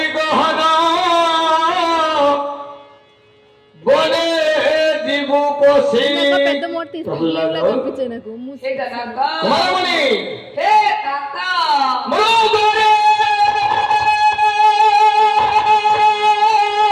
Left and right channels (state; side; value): identical; both; correlation 1.00